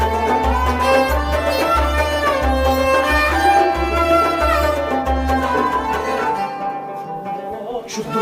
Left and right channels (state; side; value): identical; both; correlation 1.00